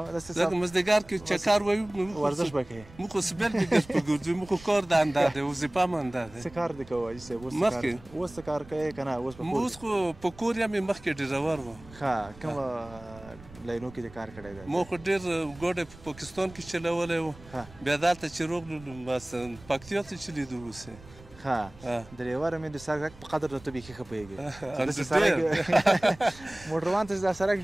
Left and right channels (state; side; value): noise; right; rumble, 20 dB below the sound